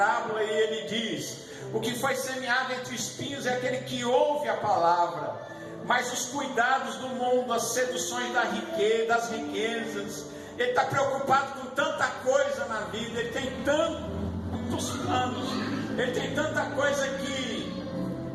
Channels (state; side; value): identical; both; correlation 1.00